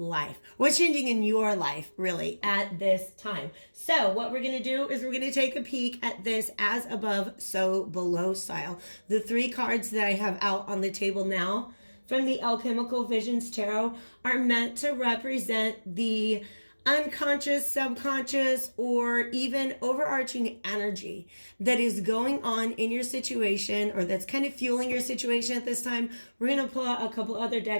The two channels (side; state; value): both; inverted; correlation -1.00